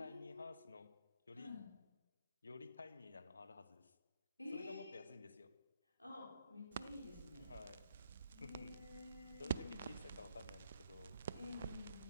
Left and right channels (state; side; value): inverted; both; correlation -0.75